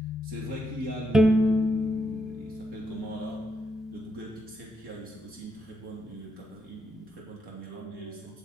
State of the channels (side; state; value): both; normal; correlation 0.80